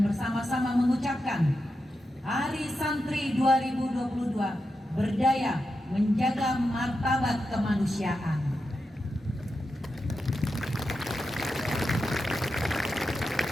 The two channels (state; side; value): normal; both; correlation 0.88